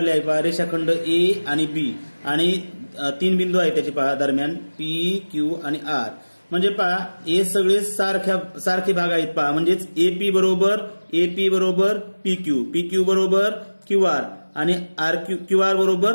आहे. पहा रेषाखंड A आणि B आणि 3 बिंदू आहेत त्याचे पहा दरम्यान P, Q आणि R म्हणजे पहा हे सगळे सारखे भाग आहेत. पहा म्हणजेच AP बरोबर PQ, PQ बरोबर QR आणि QR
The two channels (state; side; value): inverted; both; correlation -1.00